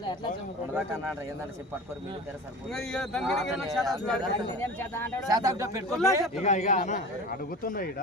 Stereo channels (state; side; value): normal; both; correlation 0.35